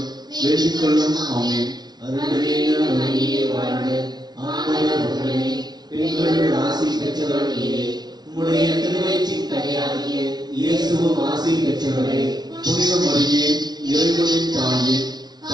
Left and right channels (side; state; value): left; late; 0.20 ms